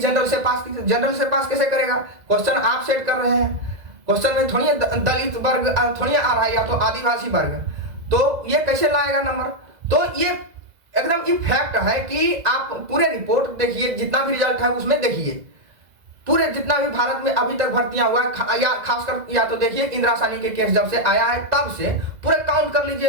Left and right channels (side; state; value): left; late; 2.0 ms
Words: से पास कैसे करेगा? क्वेश्चन आप सेट कर रहे हैं, क्वेश्चन में थोड़ी दलित वर्ग थोड़ी आ रहा है या तो आदिवासी वर्ग, तो ये कैसे लाएगा नंबर? तो ये एकदम ये फैक्ट है कि आप पूरे रिपोर्ट देखिए, जितना भी रिजल्ट है उसमें देखिए, पूरे जितना भी भारत में अभी तक भर्तियां हुआ है या खासकर या तो देखिए इंदिरा साहनी के केस जब से आया है तब से पूरे काउंट कर